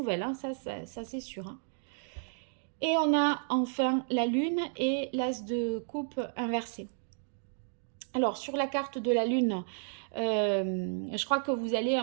hein, ça c'est sûr. Hein. Et on a enfin la lune et l'as de coupe inversé. Alors, sur la carte de la lune, je crois que vous allez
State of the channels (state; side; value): silent; left; digital silence